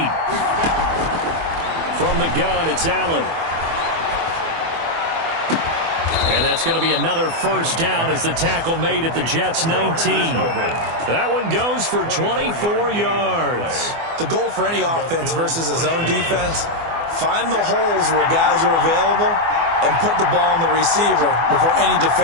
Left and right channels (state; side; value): late; left; 24 ms